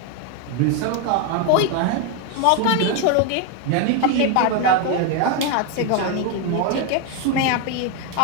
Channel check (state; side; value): different; both; correlation 0.01